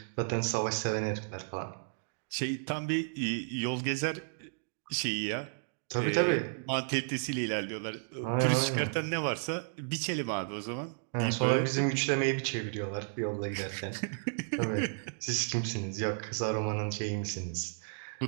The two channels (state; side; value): silent; left; digital silence